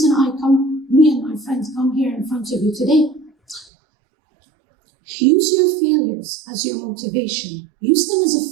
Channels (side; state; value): left; drops out; at 3.7 s